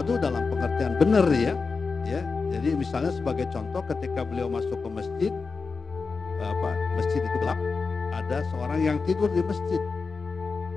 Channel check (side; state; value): right; quieter; 4.6 dB